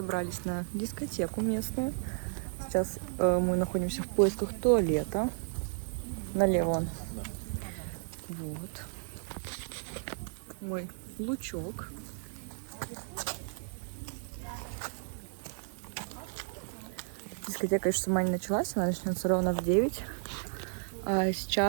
на дискотеку местную. Сейчас мы находимся в поисках туалета. Налево он. Вот. Мой лучок. Дискотека еще сама не началась, она начнется ровно в 9. А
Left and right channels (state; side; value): silent; left; digital silence